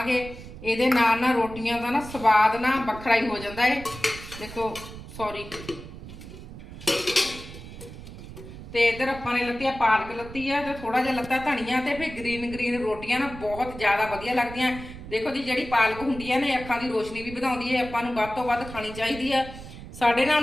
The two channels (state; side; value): noise; right; rumble, 13 dB below the sound